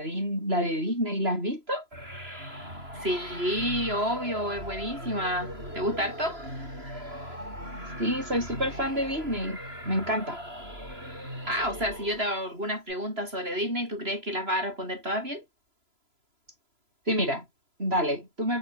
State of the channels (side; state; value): left; late; 3.0 ms